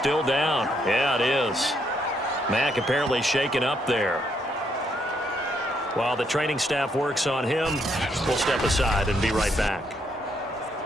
down. Yeah, it is. Mack apparently shaken up there. While the training staff works on him, we'll step aside and be right back.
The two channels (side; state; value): both; normal; correlation 0.74